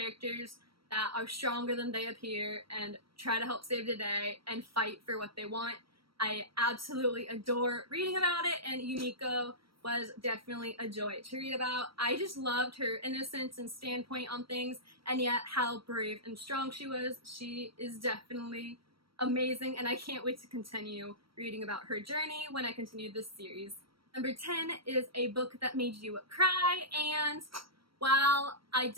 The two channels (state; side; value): late; left; 0.75 ms